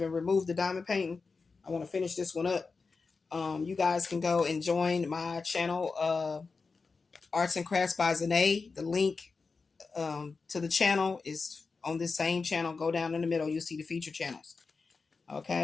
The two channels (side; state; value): right; quieter; 4.5 dB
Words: removed the diamond painting. I want to finish this one up. You guys can go and join my channel, Arts and Crafts by Zahnae. The link to the channel is on this same channel. Go down in the middle. You'll see the feature channels.